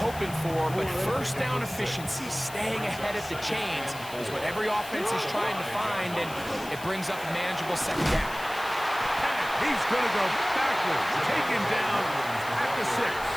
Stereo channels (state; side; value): noise; left; hiss, 15 dB below the sound